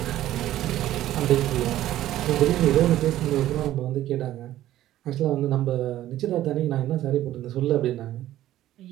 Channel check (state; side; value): quieter; left; 13.6 dB